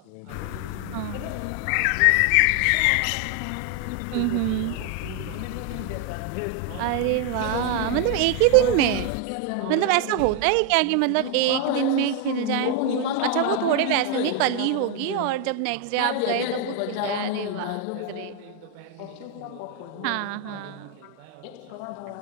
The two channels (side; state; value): both; different; correlation 0.01